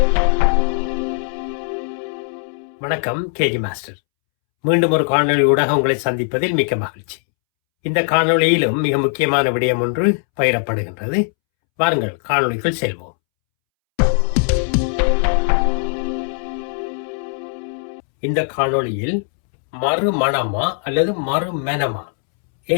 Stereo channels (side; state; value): right; silent; 66 dB below the other